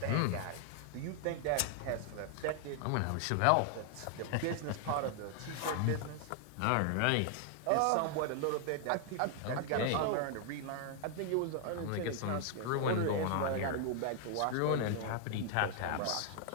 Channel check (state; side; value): different; both; correlation 0.00